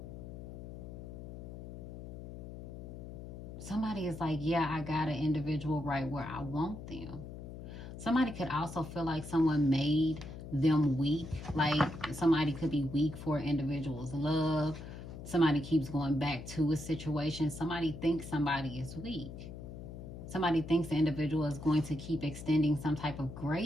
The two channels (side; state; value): left; noise; hum, 11 dB below the sound